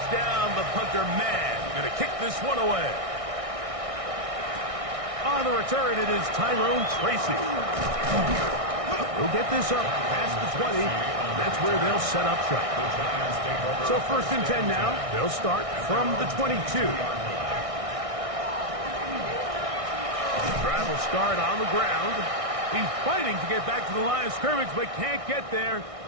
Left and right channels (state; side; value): late; left; 1.6 ms